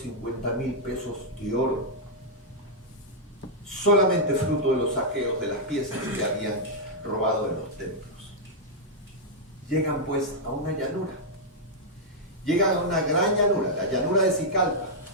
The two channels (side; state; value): both; normal; correlation -0.06